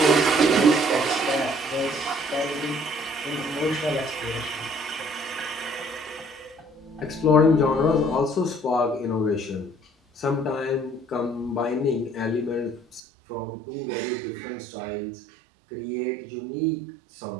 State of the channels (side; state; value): left; drops out; at 13.0 s